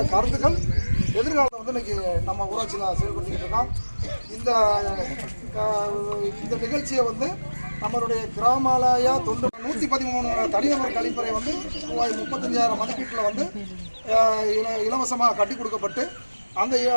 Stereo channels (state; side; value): inverted; both; correlation -1.00